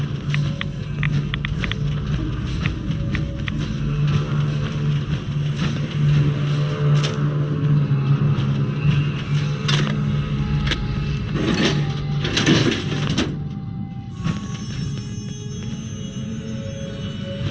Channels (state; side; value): identical; both; correlation 1.00